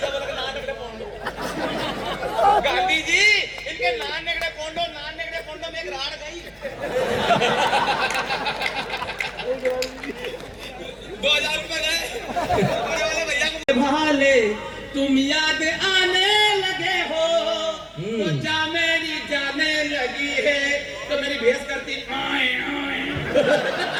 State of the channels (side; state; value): both; identical; correlation 1.00